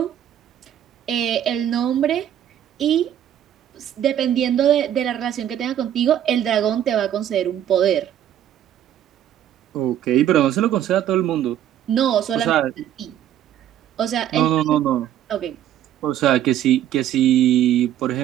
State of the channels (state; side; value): quieter; left; 10.9 dB